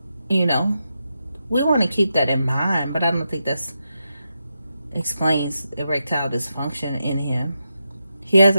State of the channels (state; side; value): inverted; both; correlation -0.87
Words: We want to keep that in mind, but I don't think that explains erectile dysfunction in him. He has